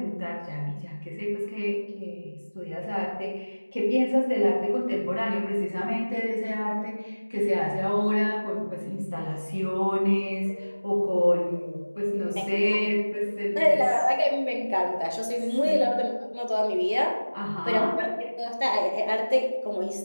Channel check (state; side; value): inverted; both; correlation -1.00